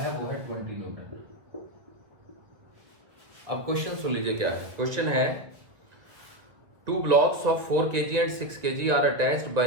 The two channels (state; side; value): late; left; 1.8 ms